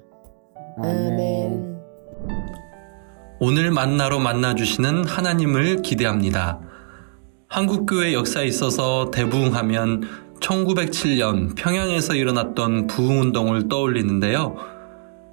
아멘. 오늘 만나로 만나주시는 하나님을 기대합니다. 한국교회 역사에 있어서 대부흥하면 1907년 평양에서 일어났던 부흥운동을 떠올리는데요.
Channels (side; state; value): left; silent; digital silence